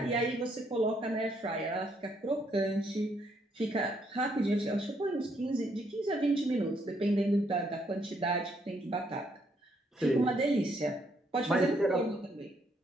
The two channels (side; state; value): both; normal; correlation 0.72